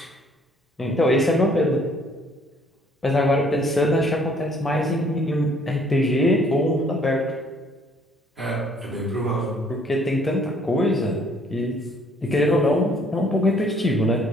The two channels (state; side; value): normal; both; correlation 0.61